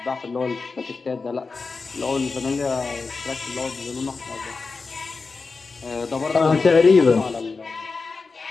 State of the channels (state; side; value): quieter; right; 4.3 dB